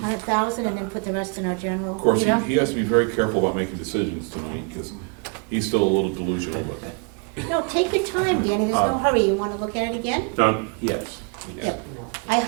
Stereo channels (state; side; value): quieter; left; 37.0 dB